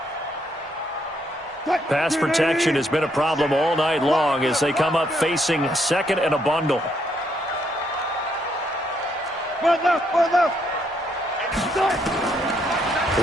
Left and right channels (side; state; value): both; normal; correlation 0.73